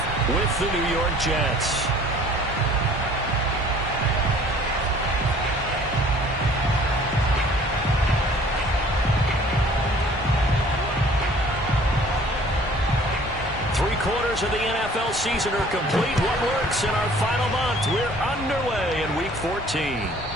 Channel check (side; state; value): both; normal; correlation 0.52